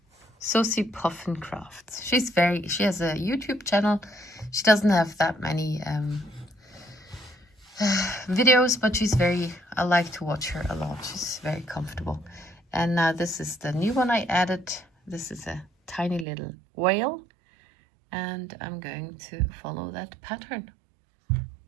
Sosie Puffin Crafts. She has a YouTube channel. She doesn't have that many videos, but I like to watch her a lot. She's very comfortable. And now this is the new one I added. This is a tiny little whale, and I'm going to follow that pattern.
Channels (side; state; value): left; drops out; at 16.2 s